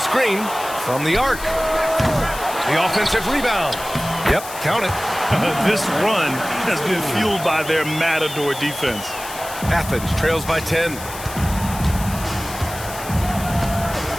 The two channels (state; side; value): noise; left; hiss, 12 dB below the sound